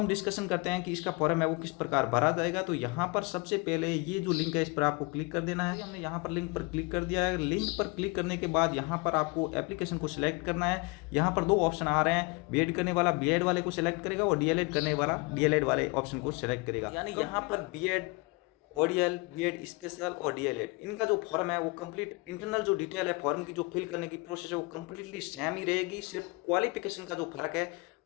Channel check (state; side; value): quieter; right; 27.2 dB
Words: डिस्कशन करते हैं कि इसका फॉर्म है वो किस प्रकार भरा जाएगा। तो यहाँ पर सबसे पहले ये जो लिंक है इस पर आपको क्लिक कर देना है। हमने यहाँ पर लिंक पर क्लिक कर दिया है। लिंक पर क्लिक करने के बाद यहाँ पर आपको एप्लीकेशन को सिलेक्ट करना है। यहाँ पर दो ऑप्शन आ रहे हैं, बीएड करने वाला बीएड वाले को सिलेक्ट करेगा और डीएलएड करने वाला डीएलएड वाले ऑप्शन को सिलेक्ट करेगा। यानी यहाँ पर बीएड ओडीएल, बीएड स्पेशल और डीएलएड इनका जो फॉर्म है वो कंप्लीट इंटरनल जो डिटेल है फॉर्म की जो फिल करने की प्रोसेस है वो कंप्लीटली सेम ही रहेगी। सिर्फ क्वालिफिकेशन का जो फर्क है